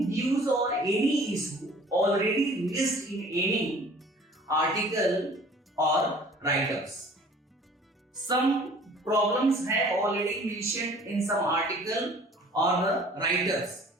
views on any issue already raised in any article or write-ups. Some problems have already mentioned in some article or the write-ups,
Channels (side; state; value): both; normal; correlation 0.50